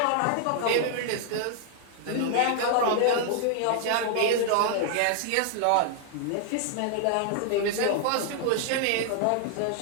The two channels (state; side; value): different; both; correlation 0.00